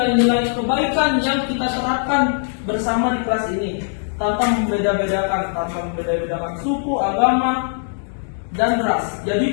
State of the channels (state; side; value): silent; right; digital silence